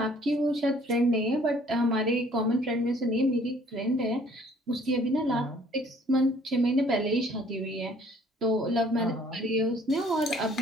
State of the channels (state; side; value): normal; both; correlation 0.58